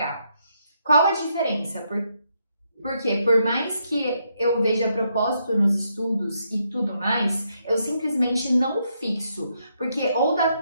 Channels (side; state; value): both; inverted; correlation -0.77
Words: Qual a diferença? Porque por mais que eu veja propósito nos estudos e tudo mais, eu simplesmente não fixo, porque ou dá